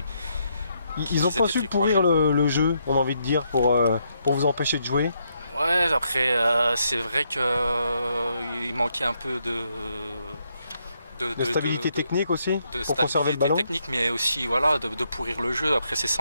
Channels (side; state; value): both; inverted; correlation -0.77